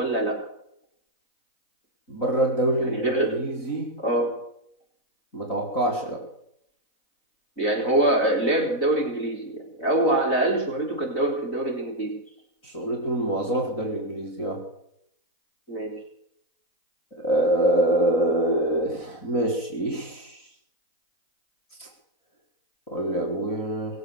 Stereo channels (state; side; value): late; right; 4.0 ms